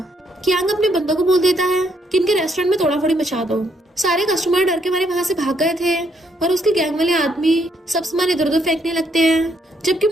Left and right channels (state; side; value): normal; both; correlation 0.72